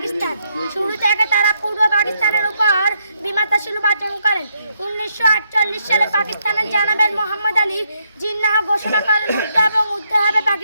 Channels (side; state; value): both; inverted; correlation -0.76